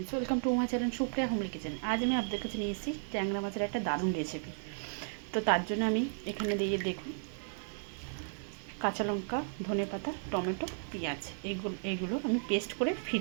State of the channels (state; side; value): silent; left; digital silence